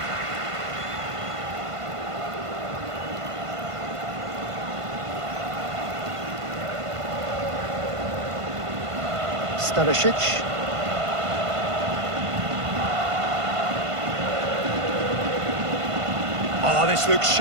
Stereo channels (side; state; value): left; late; 1.5 ms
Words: Stanisic. Oh, this looks